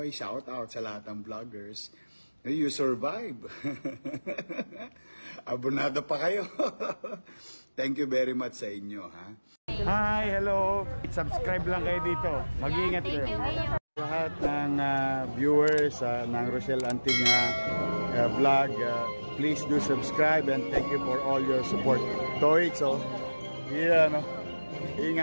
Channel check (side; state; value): both; inverted; correlation -1.00